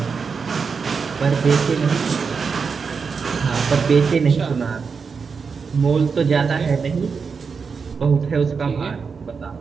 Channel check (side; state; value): left; quieter; 5.5 dB